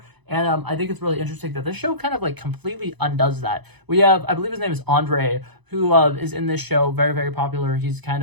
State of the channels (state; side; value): late; left; 0.99 ms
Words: And I think it's really interesting that this show kind of like completely undoes that. We have, I believe his name is Andre, who is in this show, very, very popular. He's kind